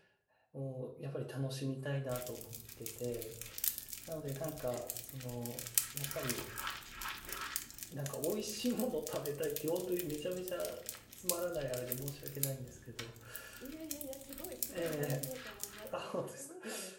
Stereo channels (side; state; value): both; identical; correlation 1.00